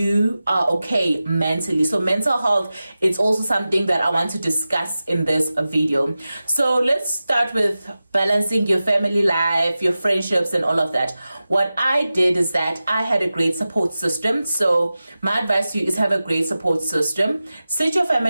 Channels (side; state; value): both; inverted; correlation -0.95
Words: are okay mentally. So mental health is also something that I want to discuss in this video. So let's start with balancing your family life, your friendships, and all of that. What I did is that I had a great support system. So my advice to you is have a great support system. Sit your